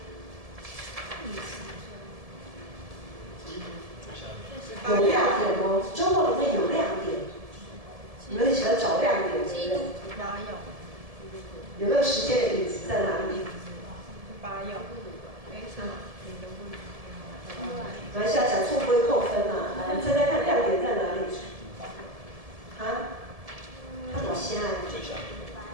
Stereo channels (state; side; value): late; left; 1.7 ms